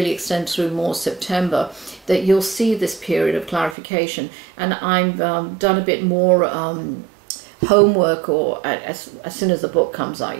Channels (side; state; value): left; drops out; at 3.8 s